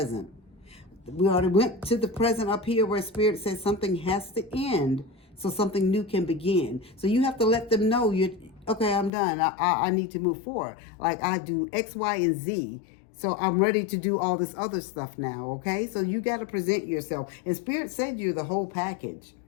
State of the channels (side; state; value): right; drops out; at 9.1 s